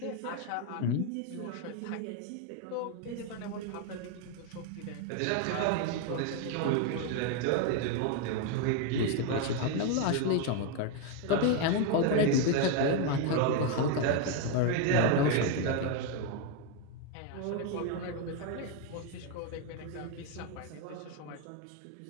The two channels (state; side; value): different; both; correlation 0.01